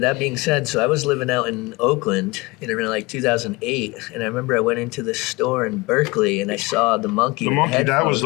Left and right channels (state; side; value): quieter; right; 23.4 dB